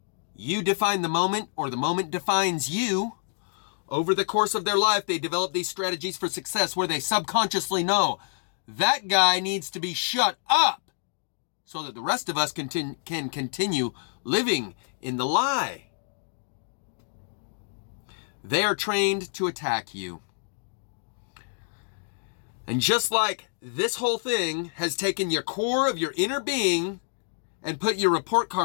you define the moment or the moment defines you, over the course of their life, they develop these strategies for success where they subconsciously know that guy needs to be shut up so that the rest of us can continue living in the lie. They are trained to attack you. And just like this whole thing has taken your core of your inner being and put your report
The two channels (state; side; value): silent; right; digital silence